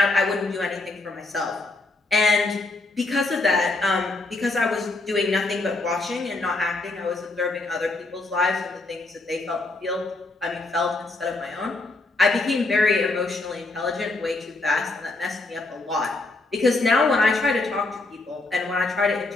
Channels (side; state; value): right; quieter; 3.2 dB